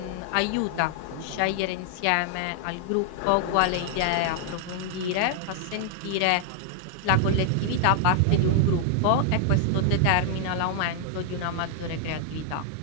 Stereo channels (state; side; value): different; both; correlation 0.00